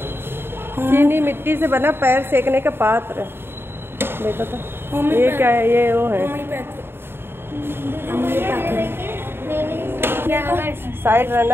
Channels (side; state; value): left; late; 0.11 ms